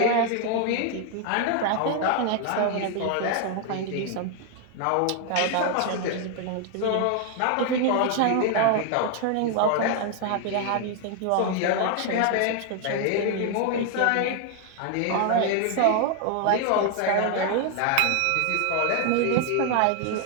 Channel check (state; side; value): different; both; correlation 0.00